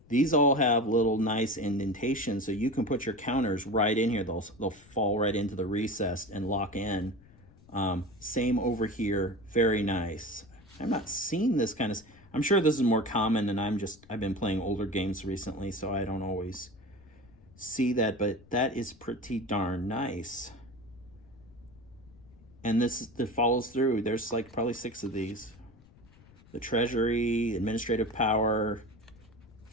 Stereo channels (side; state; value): left; noise; rumble, 25 dB below the sound